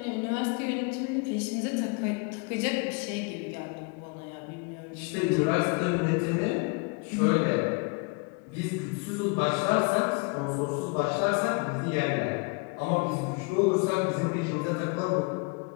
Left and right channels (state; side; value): quieter; right; 31.1 dB